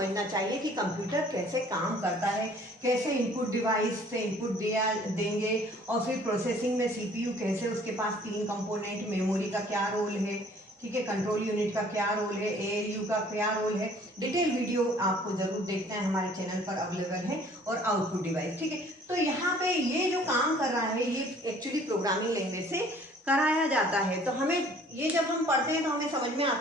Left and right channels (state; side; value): normal; both; correlation 0.55